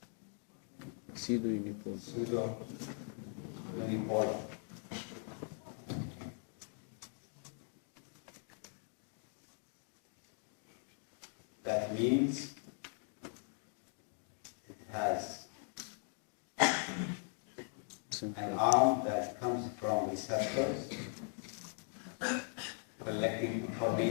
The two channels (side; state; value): right; silent; 51 dB below the other